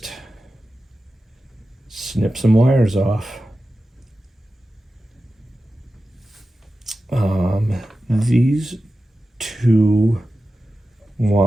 snipped some wires off. These two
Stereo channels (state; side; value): normal; both; correlation 0.93